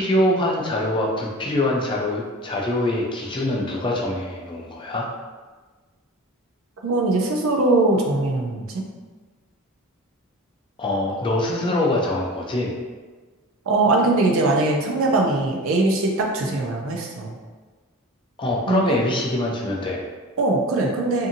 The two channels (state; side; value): normal; both; correlation 0.35